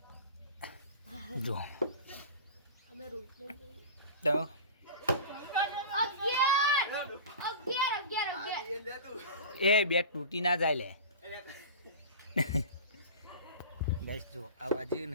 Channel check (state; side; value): inverted; both; correlation -0.33